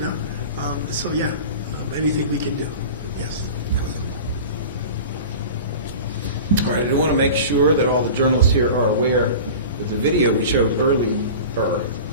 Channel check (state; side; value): inverted; both; correlation -0.35